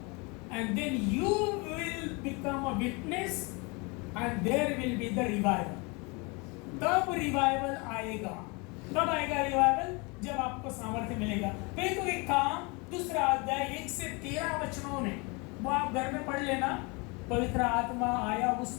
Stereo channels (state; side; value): quieter; right; 28.9 dB